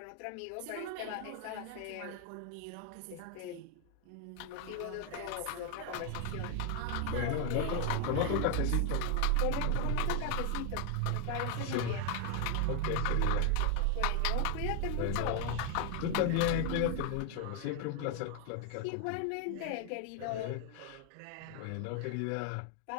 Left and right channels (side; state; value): both; different; correlation 0.01